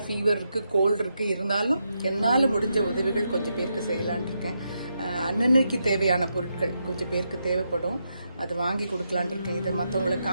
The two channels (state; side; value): inverted; both; correlation -0.83